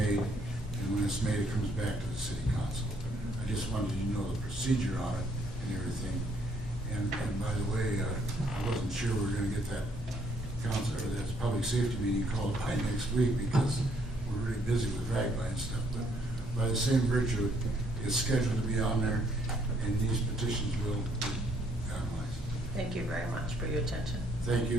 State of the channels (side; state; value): both; normal; correlation 0.67